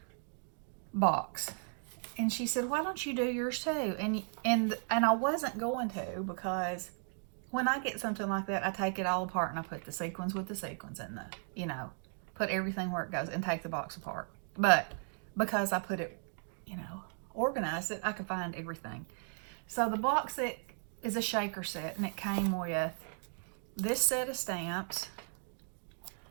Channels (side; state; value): left; silent; 54 dB below the other